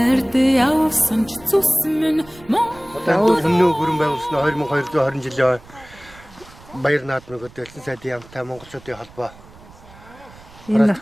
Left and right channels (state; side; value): noise; right; rumble, 23 dB below the sound